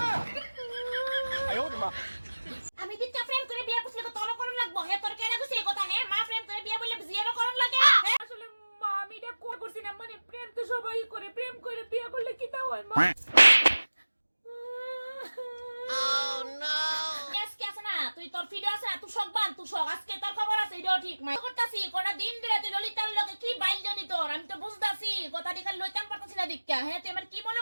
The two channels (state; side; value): inverted; both; correlation -1.00